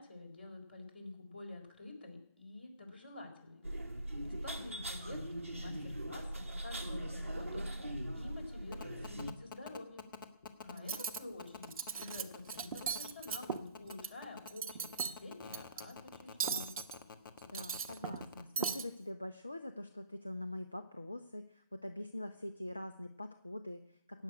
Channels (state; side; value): inverted; both; correlation -0.61